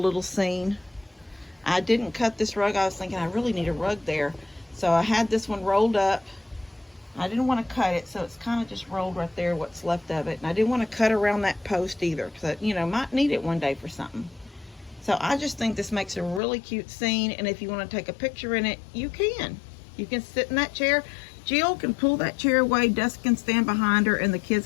scene. I didn't cut this rug. I was thinking I really need a rug there. So I had this one rolled up. I didn't want to cut it, so it's kind of just rolled right there, what's left of it. And I didn't want to cut around that post either, because I, might need it one day for something. So I just think this makes a really cute scene, and if you want to take a picture in it, you can. You can sit in that chair. Jill can pull that chair away, Dust can stand behind her, and the kids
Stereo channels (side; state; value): right; drops out; at 16.4 s